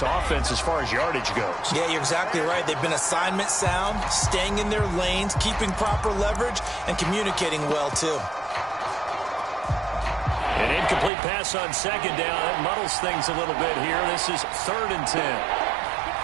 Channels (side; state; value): left; drops out; at 11.1 s